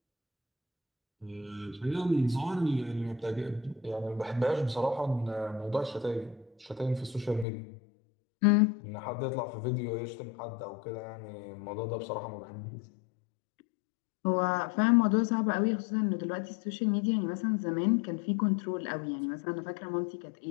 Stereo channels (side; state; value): right; drops out; at 7.5 s